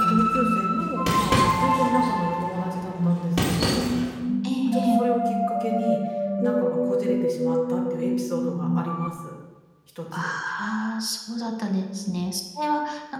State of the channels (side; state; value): both; identical; correlation 1.00